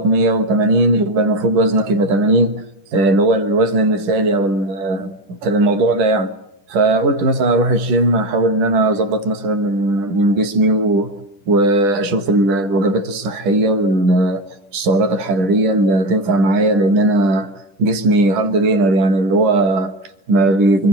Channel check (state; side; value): late; left; 10 ms